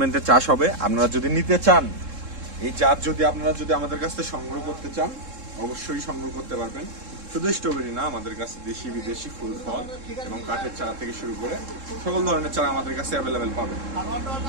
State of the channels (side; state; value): left; late; 3.7 ms